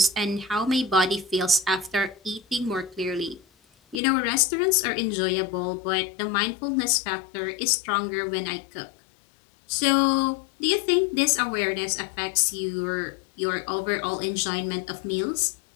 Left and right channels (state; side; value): drops out; right; at 4.0 s